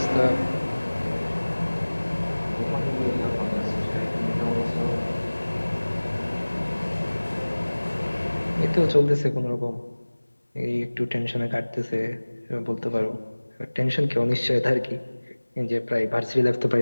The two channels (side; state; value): both; inverted; correlation -1.00